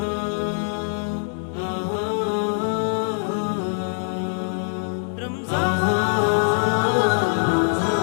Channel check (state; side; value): silent; right; digital silence